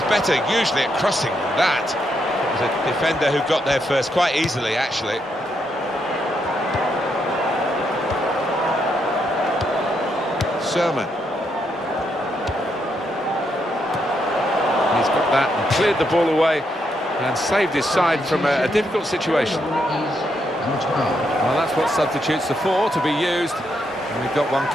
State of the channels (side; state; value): both; normal; correlation 0.78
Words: better usually at crossing than that. It was a defender who got there first quite easily, actually. Sherman. He's got that and cleared the ball away and saved his side from a difficult situation. Well, that's what substitutes are for, to be used. And we've got one